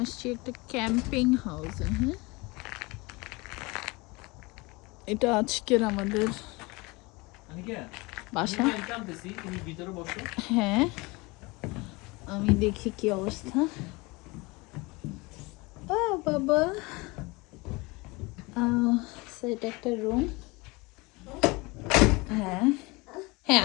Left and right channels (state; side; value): quieter; right; 24.8 dB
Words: আসছি একটা ক্যাম্পিং হাউসে। হ্যাঁ, এটা আজকের আমাদের বাসা। হ্যাঁ, আমি দেখি কি অবস্থা। বাবা, এটা একটা রুম। হ্যাঁ হ্যাঁ,